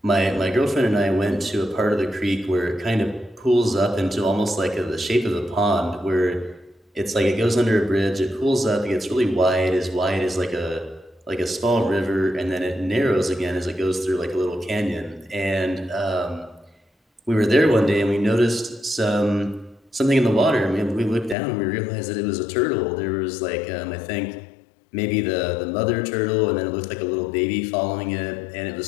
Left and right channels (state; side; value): drops out; right; at 21.4 s